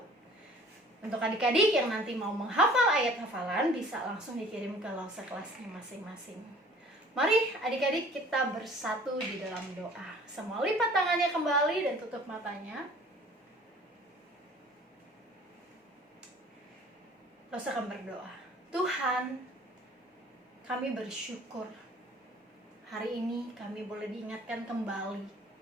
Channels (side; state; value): both; normal; correlation 0.51